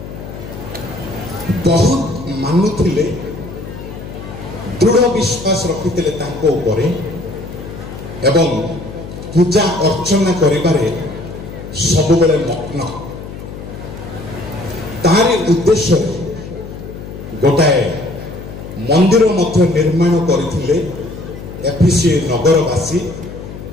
बहुत मानुथिले, दृढ़ विश्वास रखिथिले तांको उपरे एवं पूजा अर्चना करिबारे सबुबेले मग्न। तारी उद्देश्य गोटाए मंदिर मध्य निर्माण करथिले एफिसी नगरवासी।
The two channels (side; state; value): left; noise; hum, 11 dB below the sound